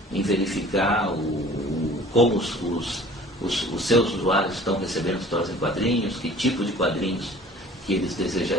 em verificar como os seus usuários estão recebendo histórias em quadrinhos, que tipo de quadrinhos que eles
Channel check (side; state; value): both; normal; correlation 0.48